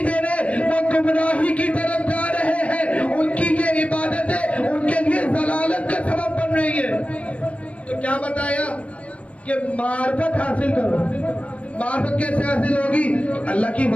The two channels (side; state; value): right; late; 0.064 ms